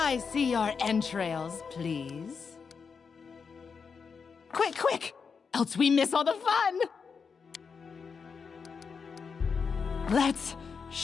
I see your entrails, please? Quick, quick! Else we miss all the fun! Let's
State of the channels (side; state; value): right; quieter; 5.7 dB